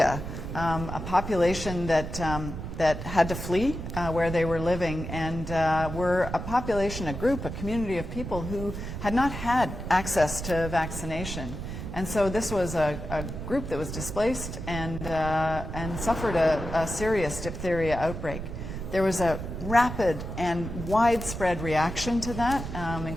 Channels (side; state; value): right; noise; rumble, 7 dB below the sound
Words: a population that had to flee where they were living, and were a population, a group, a community of people who had not had access to vaccination. And so this was a group that was displaced and suffered a serious diphtheria outbreak. There was a rapid and widespread reaction to that,